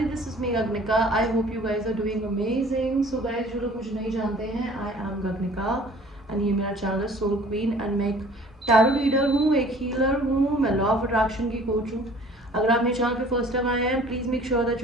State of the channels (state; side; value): normal; both; correlation 0.50